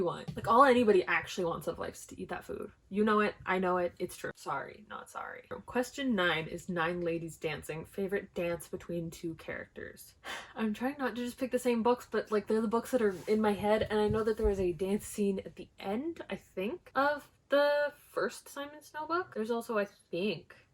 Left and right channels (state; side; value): identical; both; correlation 1.00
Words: want. Like, all anybody actually wants out of life is to eat that food. You know it. I know it. It's true. Sorry, not sorry. Question 9 is 9 Ladies Dancing. Favorite dance between 2 characters. I'm trying not to just pick the same books, but like, they're the books that are in my head. And I know that there was a dance scene at the end, I think, of the first Simon Snow book. There's also, I think,